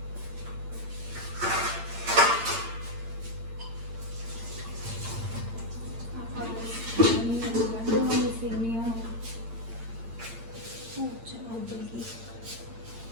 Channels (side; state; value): left; late; 8.8 ms